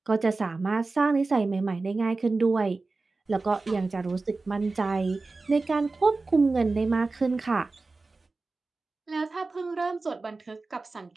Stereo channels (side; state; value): left; quieter; 3.6 dB